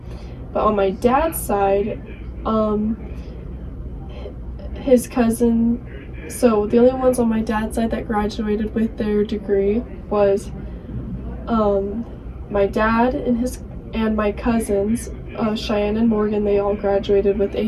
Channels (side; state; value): both; identical; correlation 1.00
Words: But on my dad's side, his cousin, so the only ones on my dad's side that graduated with their degree was my dad and my cousins, Cheyenne and Morgan. They all graduated with